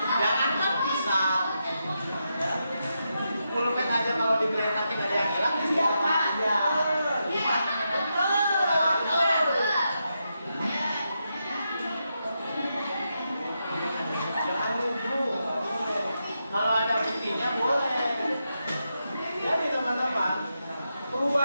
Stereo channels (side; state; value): both; inverted; correlation -0.85